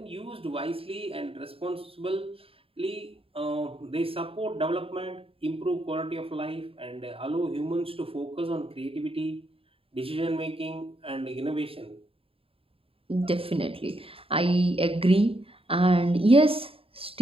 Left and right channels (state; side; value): late; left; 0.27 ms